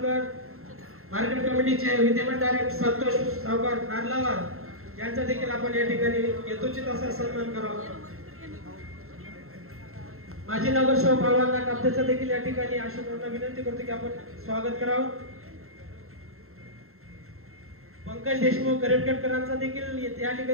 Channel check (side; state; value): left; late; 0.62 ms